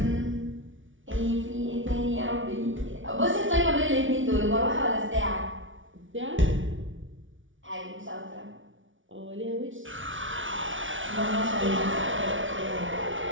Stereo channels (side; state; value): left; late; 0.56 ms